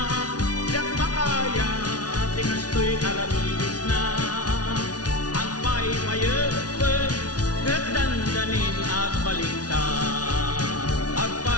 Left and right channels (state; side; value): late; right; 0.69 ms